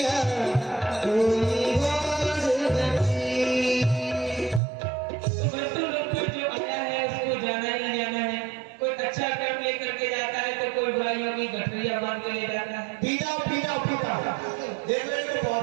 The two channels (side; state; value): left; drops out; at 4.6 s